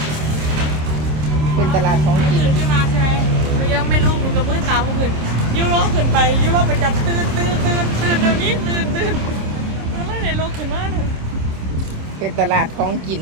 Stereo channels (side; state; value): left; late; 26 ms